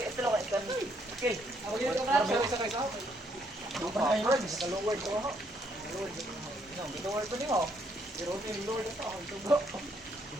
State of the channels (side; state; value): both; normal; correlation 0.71